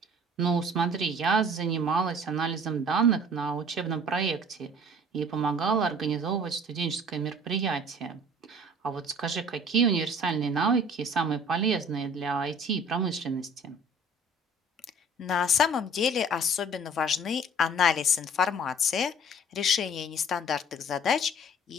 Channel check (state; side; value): normal; both; correlation 0.49